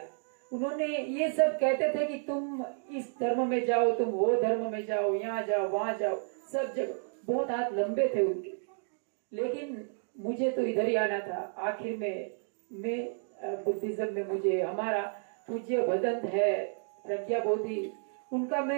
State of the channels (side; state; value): left; silent; 57 dB below the other